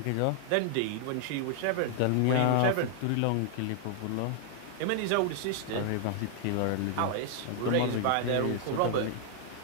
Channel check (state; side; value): different; both; correlation 0.00